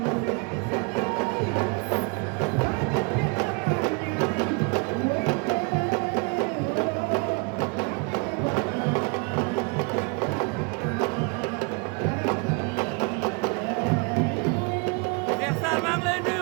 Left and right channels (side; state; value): left; quieter; 30.7 dB